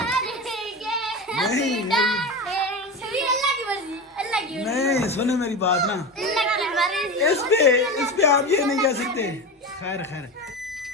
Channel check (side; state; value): both; normal; correlation 0.24